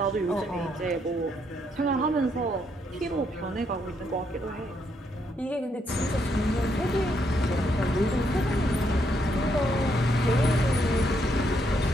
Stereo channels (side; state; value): both; normal; correlation 0.75